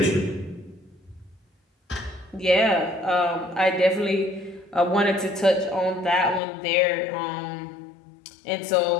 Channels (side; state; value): right; drops out; at 6.4 s